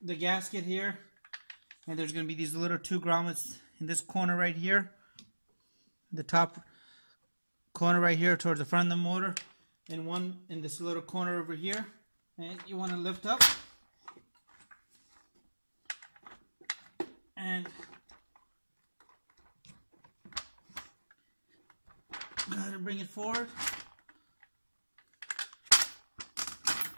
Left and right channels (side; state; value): both; inverted; correlation -1.00